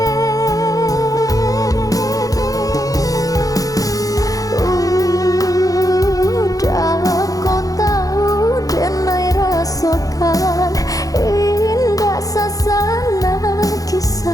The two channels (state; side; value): late; right; 0.17 ms